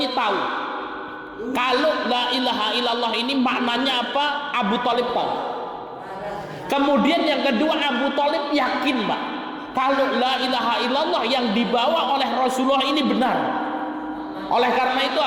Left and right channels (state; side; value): identical; both; correlation 1.00